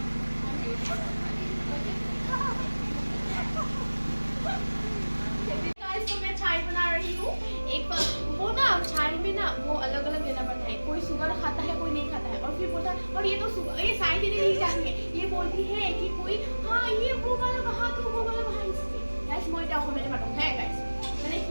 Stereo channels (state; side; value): inverted; both; correlation -1.00